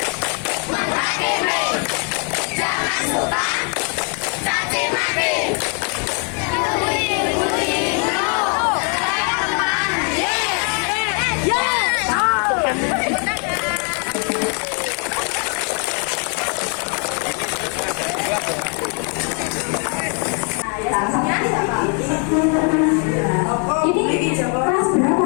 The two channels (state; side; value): quieter; right; 38.8 dB